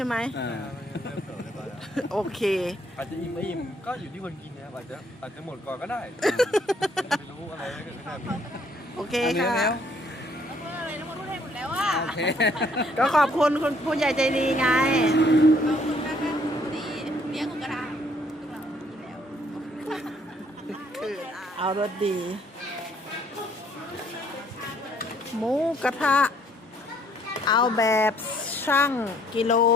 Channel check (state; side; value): normal; both; correlation 0.65